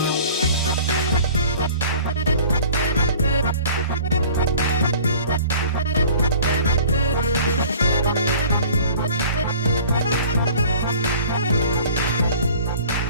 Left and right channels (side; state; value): both; inverted; correlation -0.47